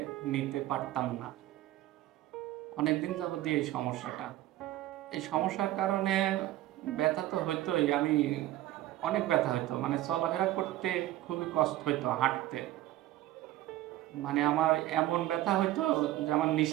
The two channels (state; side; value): quieter; left; 15.2 dB